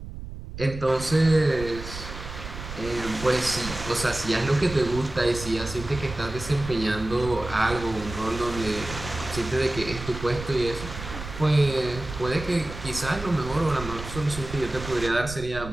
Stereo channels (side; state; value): right; noise; rumble, 10 dB below the sound